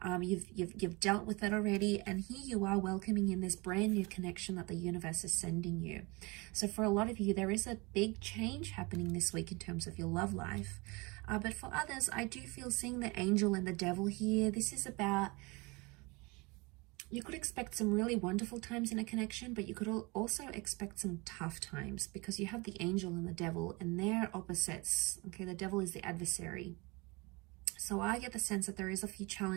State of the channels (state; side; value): quieter; left; 26.5 dB